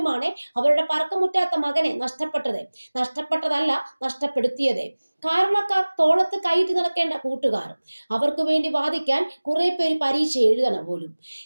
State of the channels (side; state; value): both; inverted; correlation -1.00